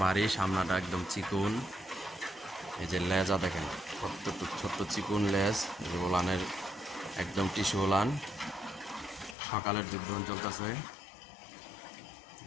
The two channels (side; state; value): right; drops out; at 9.3 s